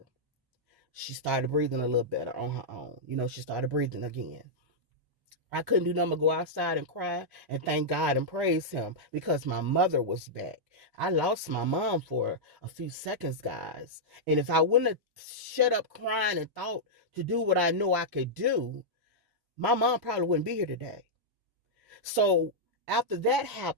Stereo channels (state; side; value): late; left; 1.1 ms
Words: She started breathing a little better on her own. She started breathing again. I couldn't do nothing but go outside and cry and thank God and praise him because my mother was back. I lost my mom for a few seconds, guys. And if I wouldn't have shut up crying and thought to do what I know I could do, my mom probably wouldn't be here today. So after that